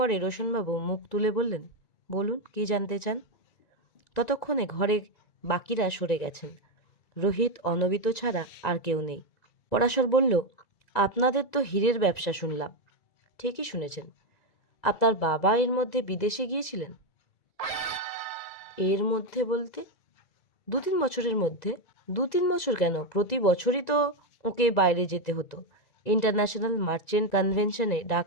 রোশনবাবু মুখ তুলে বললেন, বলুন, কি জানতে চান? ততক্ষণে ঘরে বাকিরা সরে গেছেন। রোহিত, অনবিত ছাড়া আর কেউ নেই। পরাশর বলল, আপনাদের তো হীরের ব্যবসা শুনলাম। ঠিকই শুনেছেন। আপনার বাবা এর মধ্যে বিদেশে গিয়েছিলেন? এর মধ্যে বলতে? 2-3 বছরের মধ্যে। 2-3 বছর কেন, প্রতি বছরই তো ওকে বাইরে যেতে হতো। ইন্টারন্যাশনাল মার্চেন্ট কনভেনশনে ডাক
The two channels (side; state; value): right; late; 1.9 ms